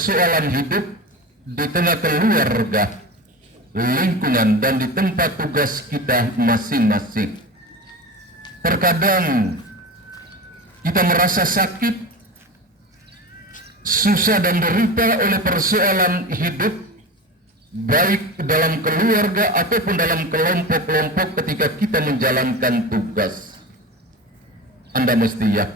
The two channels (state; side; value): normal; both; correlation 0.27